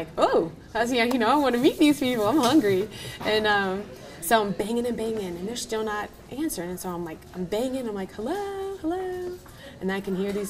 oh, I want to meet these people. I'm hungry. And so I'm banging and banging, and they're still not answering. And so I'm banging. I'm like, hello, hello. And I can hear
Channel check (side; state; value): both; identical; correlation 1.00